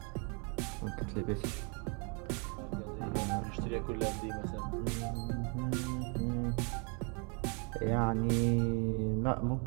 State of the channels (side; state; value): left; quieter; 35.1 dB